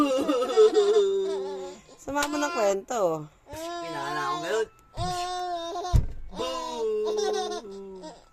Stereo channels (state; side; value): identical; both; correlation 1.00